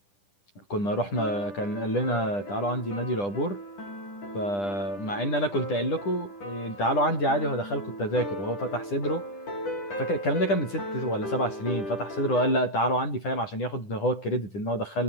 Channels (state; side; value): late; right; 10 ms